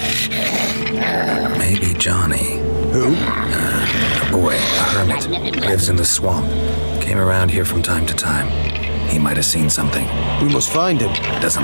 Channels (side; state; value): both; inverted; correlation -1.00